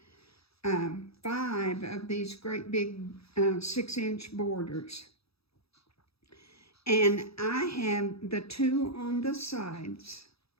5 of these great big 6-inch borders. And I have the 2 on the sides.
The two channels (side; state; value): right; late; 0.77 ms